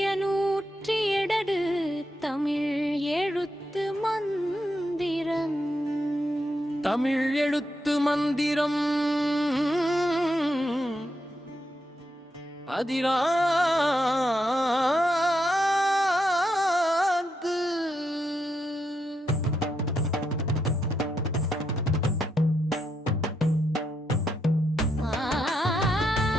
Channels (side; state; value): both; normal; correlation 0.82